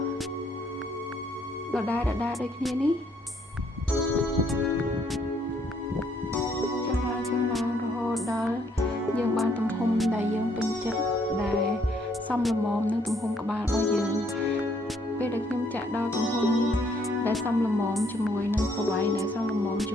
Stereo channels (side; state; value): both; normal; correlation 0.68